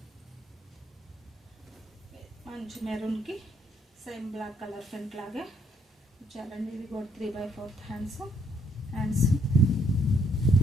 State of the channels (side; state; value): both; normal; correlation 0.69